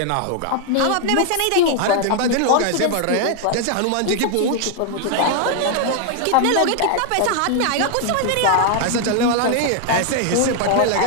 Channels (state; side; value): different; both; correlation 0.00